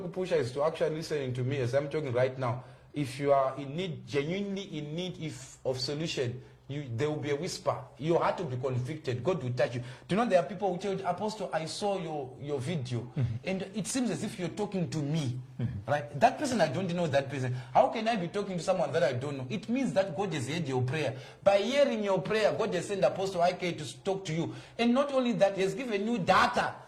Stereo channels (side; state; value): both; identical; correlation 1.00